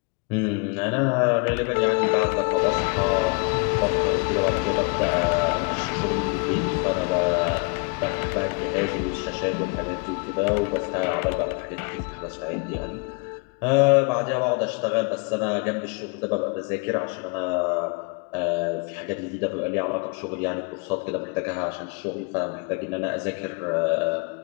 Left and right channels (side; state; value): right; quieter; 32.4 dB